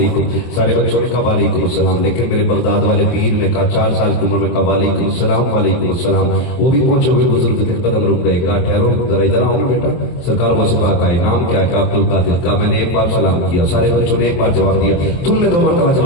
सारे बच्चों ने कहा वालेकुम सलाम। लेकिन मेरे बगदाद वाले पीर ने कहा 4 साल की उम्र में कहा वालेकुम सलाम वालेकुम सलाम। वो भी पहुंचे हुए बुजुर्ग थे, कदम रुक गए, कहा ठहरो जरा इधर आओ ना बेटा। सरकार वो से पाक आए, नाम क्या है? अब्दुल कादिर। कहा मैंने एक बार सलाम किया, सारे बच्चों ने एक बार जवाब दिया, तुमने 2 मरतबा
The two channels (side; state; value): right; late; 23 ms